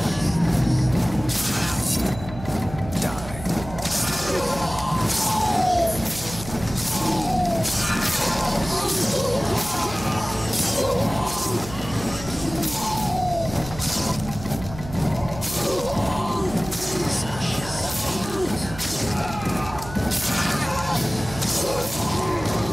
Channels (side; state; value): right; noise; hum, 12 dB below the sound